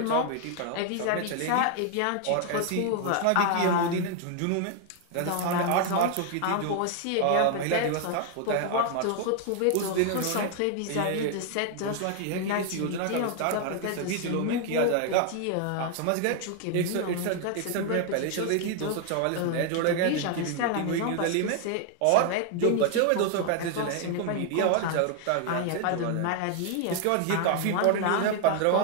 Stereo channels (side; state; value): both; different; correlation 0.00